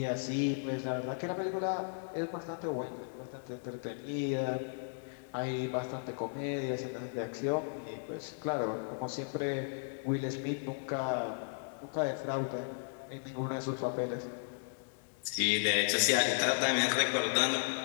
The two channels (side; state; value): right; silent; digital silence